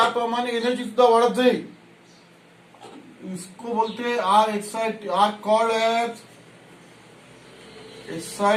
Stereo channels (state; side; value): identical; both; correlation 1.00